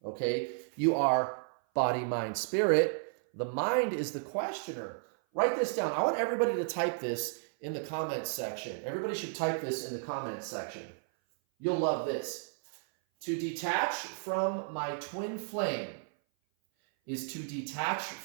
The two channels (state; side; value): silent; left; 56 dB below the other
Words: okay? You are body, mind, spirit. The mind is the questioner. Write this down. I want everybody to type this in the comments section. Everybody should type this in the comments section. You'll love this. To detach from my twin flame is to detach